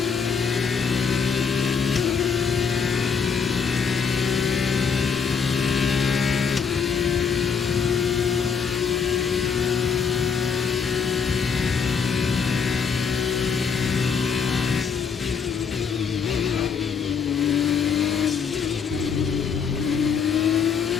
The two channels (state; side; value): quieter; right; 6.2 dB